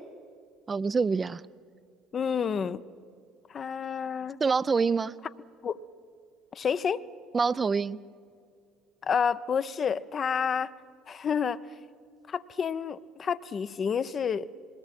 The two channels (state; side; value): normal; both; correlation 0.79